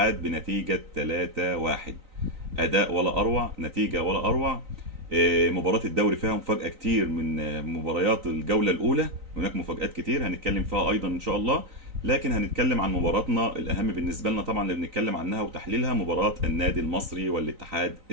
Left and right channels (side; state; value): left; late; 3.9 ms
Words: بنتيجة 3-1. أداء ولا أروع، نتيجة ولا أروع. مباراة الدوري فيها مفاجأة كتير من مباريات الجولة الأولى. هناك مفاجآت كتير هنتكلم فيها أيضا إن شاء الله. لكن هنتكلم عن مباراتنا الأهم بالنسبة لنا طبعا اللي بنتكلم عنها وتحليلها، مباراة النادي المصري والاتحاد